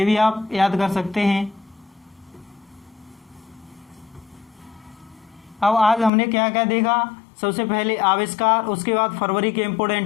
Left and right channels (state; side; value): drops out; right; at 6.1 s